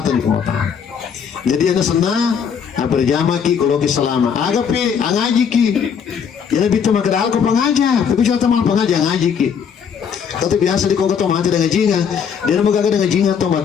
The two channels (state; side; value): quieter; right; 7.1 dB